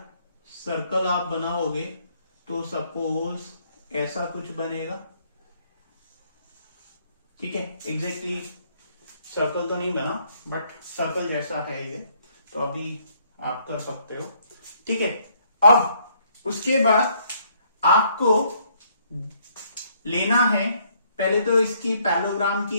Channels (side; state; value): both; inverted; correlation -0.67